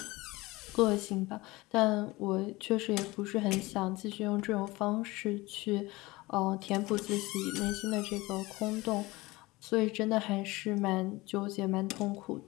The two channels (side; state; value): right; quieter; 21.2 dB